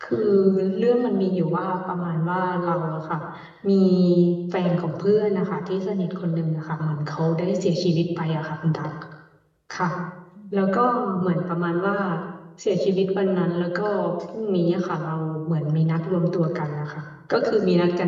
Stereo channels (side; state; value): both; identical; correlation 1.00